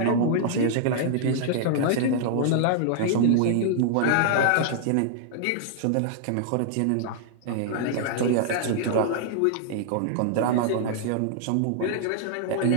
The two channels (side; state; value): both; different; correlation -0.01